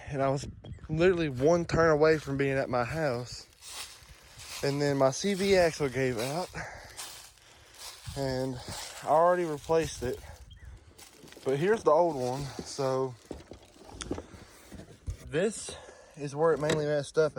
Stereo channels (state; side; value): identical; both; correlation 1.00